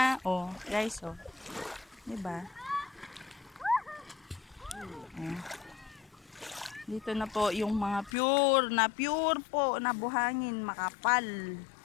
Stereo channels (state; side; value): drops out; right; at 8.1 s